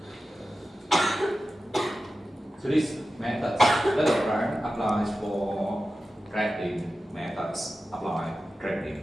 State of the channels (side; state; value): both; normal; correlation 0.93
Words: So this method, the diagram applies for grading methods. Apply